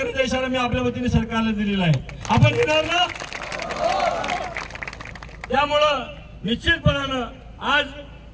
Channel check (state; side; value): identical; both; correlation 1.00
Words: इशारा मी आपल्या वतीने सरकारला दिलेला आहे। आपण देणार ना? त्यामुळं निश्चितपणानं आज